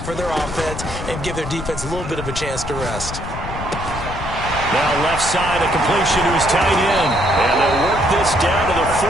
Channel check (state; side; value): noise; left; rumble, 8 dB below the sound